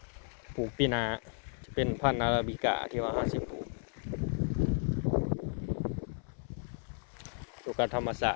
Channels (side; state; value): right; silent; 55 dB below the other